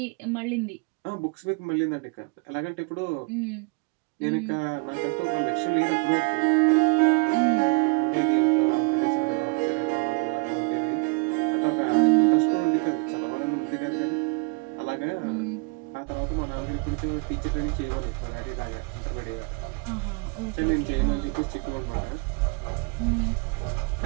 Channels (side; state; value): left; quieter; 30.7 dB